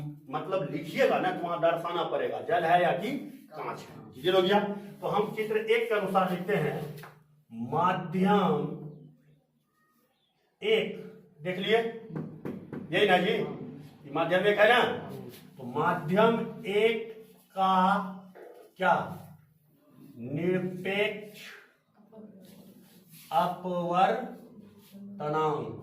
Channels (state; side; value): identical; both; correlation 1.00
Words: मतलब लिखिएगा ना तो वहां दर्शाना पड़ेगा जल है या कि कांच है। क्लियर हो गया? तो हम चित्र 1 के अनुसार लिखते हैं माध्यम 1। देख लिए यही ना जी, माध्यम 1 है ना? तो माध्यम 1 का क्या? निरपेक्ष अपवर्तनांक